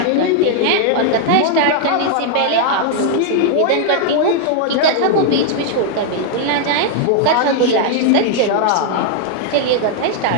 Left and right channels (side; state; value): both; different; correlation 0.00